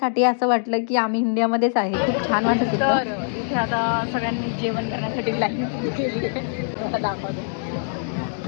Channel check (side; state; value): right; silent; digital silence